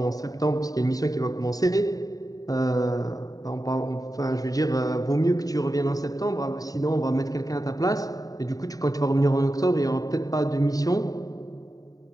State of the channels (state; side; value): late; right; 0.18 ms